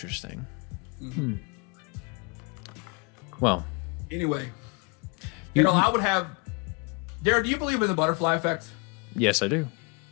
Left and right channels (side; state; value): right; quieter; 30.9 dB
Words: Mm-hmm. Well. Anyway, I would have. Darren, do you believe in the butterfly effect? Yes, I do.